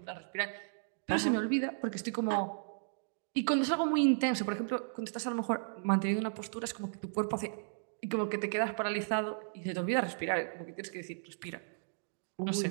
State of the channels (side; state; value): left; silent; digital silence